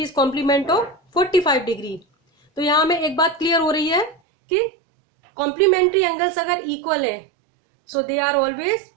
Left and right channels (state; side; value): drops out; left; at 4.2 s